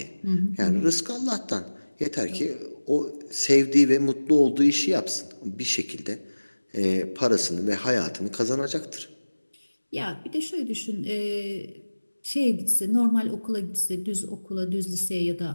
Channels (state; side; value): inverted; both; correlation -1.00